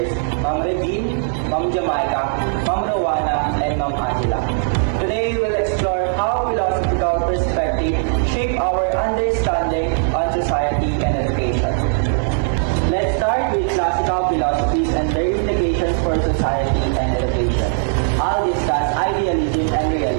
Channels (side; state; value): left; silent; digital silence